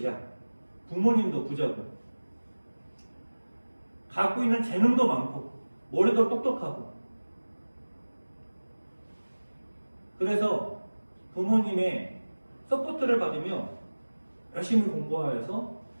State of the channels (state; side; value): inverted; both; correlation -1.00